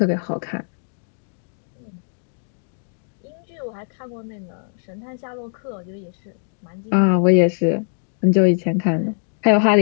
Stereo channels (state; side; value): silent; right; digital silence